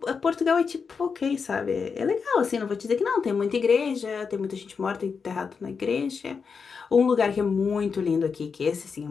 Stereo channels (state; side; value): quieter; right; 5.6 dB